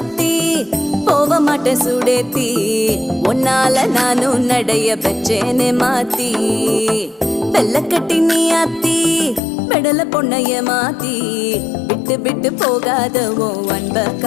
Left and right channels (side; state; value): right; drops out; at 9.4 s